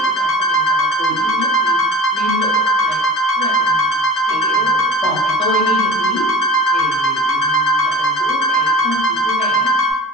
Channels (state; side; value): normal; both; correlation 0.38